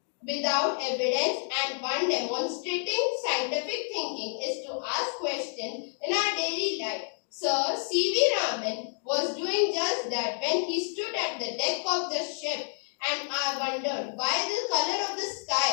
without evidence, and one demonstrating scientific thinking is to ask questions in our daily life. Sir C.V. Raman was doing just that when he stood at the deck of the ship and have wondered why the color of the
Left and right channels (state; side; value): silent; right; digital silence